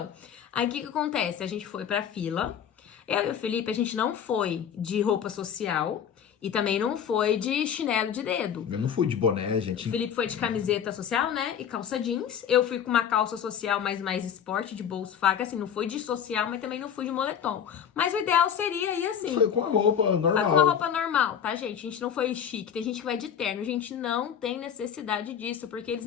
Aí o que acontece? A gente foi pra fila. Eu e o Felipe, a gente não foi de roupa social e também não foi de chinelo de dedo. Eu não fui de boné, gente. O Felipe foi de camiseta social, né? E calça jeans. Eu fui com uma calça social, mas mais esporte, de bolso faca. Assim, não fui de social, mas também não fui de moletom. Mas o ideal seria ir assim. Foi com a roupa normal. Com uma roupa normal, tá, gente? A gente não foi chique. Tem gente que vai de terno. A gente não tem necessidade disso, porque eles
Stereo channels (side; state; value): right; quieter; 8.4 dB